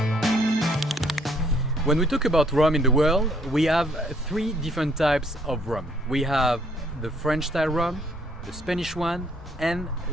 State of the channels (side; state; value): both; normal; correlation 0.65